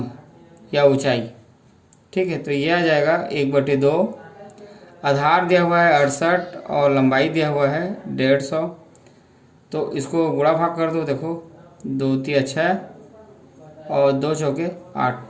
या ऊंचाई। ठीक है, तो ये आ जाएगा 1/2, आधार दिया हुआ है 68 और लंबाई दिया हुआ है 150। तो इसको गुणा भाग कर दो, देखो 2 3 6 और 2 चौके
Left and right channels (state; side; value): identical; both; correlation 1.00